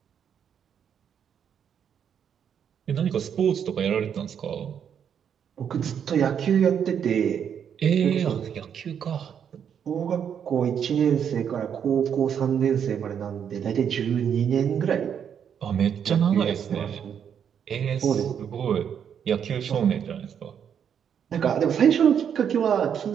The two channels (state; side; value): quieter; left; 8.2 dB